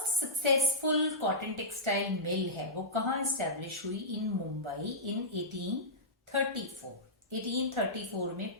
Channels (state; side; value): normal; both; correlation -0.15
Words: successful cotton textile mill है वो कहाँ स्टैब्लिश हुई, इन मुंबई इन 18 1834 में